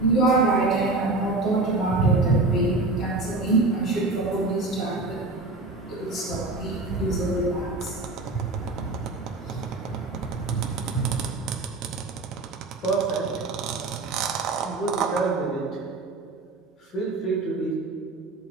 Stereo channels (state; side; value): quieter; left; 3.2 dB